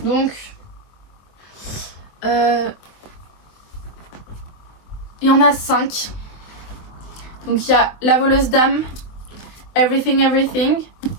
Donc, il y en a 5. Donc, il y a La voleuse d'âme, Everything Everything,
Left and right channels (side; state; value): right; late; 23 ms